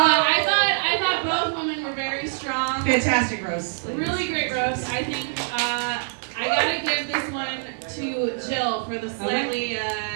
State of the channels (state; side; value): silent; left; digital silence